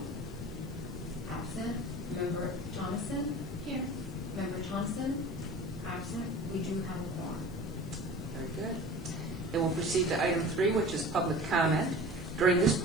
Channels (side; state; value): right; noise; hiss, 26 dB below the sound